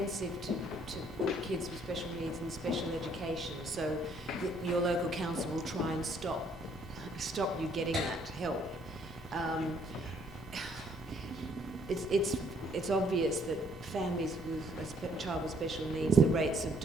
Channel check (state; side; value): normal; both; correlation 0.65